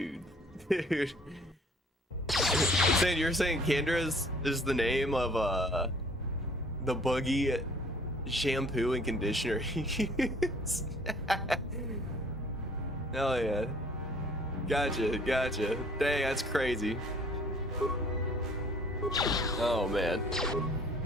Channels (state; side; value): normal; both; correlation 0.55